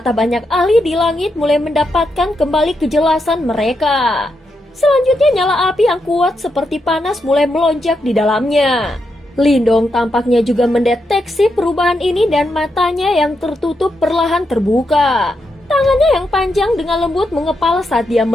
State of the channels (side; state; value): both; normal; correlation 0.83